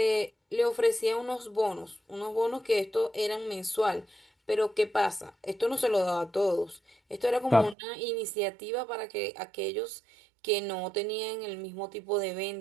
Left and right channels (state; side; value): drops out; left; at 7.8 s